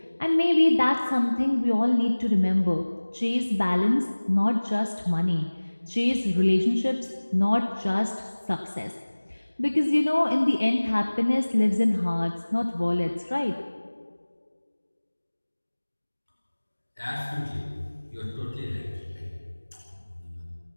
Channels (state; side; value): inverted; both; correlation -1.00